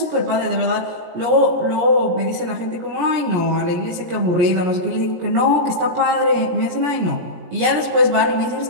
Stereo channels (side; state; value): left; late; 17 ms